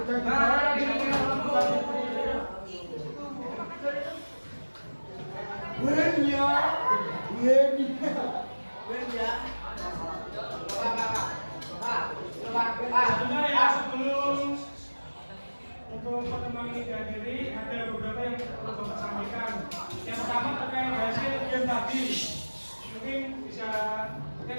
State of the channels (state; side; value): inverted; both; correlation -1.00